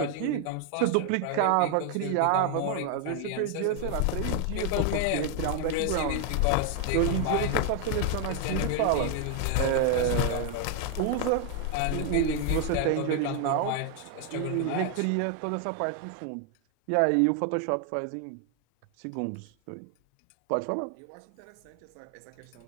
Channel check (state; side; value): different; both; correlation 0.00